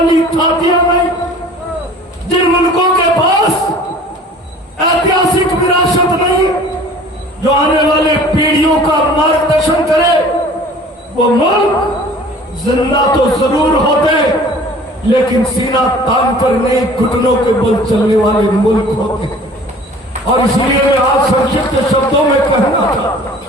थातियां नहीं, जिन मुल्कों के पास ऐतिहासिक विरासत नहीं, जो आने वाले पीढ़ियों का मार्गदर्शन करे, वो मुल्क जिंदा तो जरूर होते, लेकिन सीना तान कर नहीं, घुटनों के बल चलने वाले मुल्क होते हैं। और इसलिए मैं आज संक्षिप्त शब्दों में कहना चाहता,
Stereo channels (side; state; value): both; normal; correlation 0.47